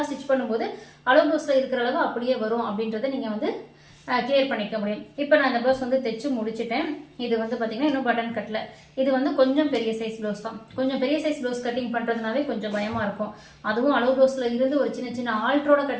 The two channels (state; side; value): identical; both; correlation 1.00